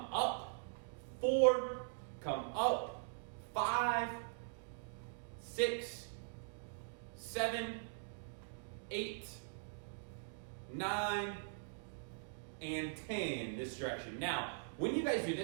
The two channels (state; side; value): silent; left; digital silence